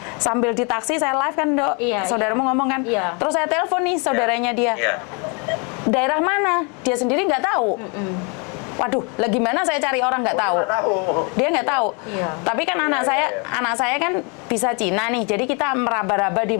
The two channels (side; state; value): right; quieter; 33.9 dB